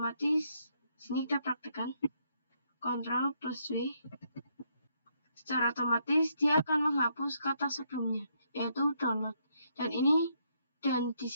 Sini kita praktekkan Ctrl+V, secara otomatis dia akan menghapus kata sebelumnya, yaitu download. Dan di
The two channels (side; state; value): both; inverted; correlation -0.74